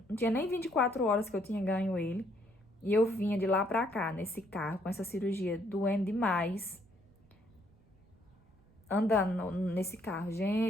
Não tinha nem 24 horas que eu tinha ganho ele. E eu vinha de lá pra cá, nesse carro, com essa cirurgia, doendo demais. Andando nesse carro.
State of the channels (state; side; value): noise; right; rumble, 30 dB below the sound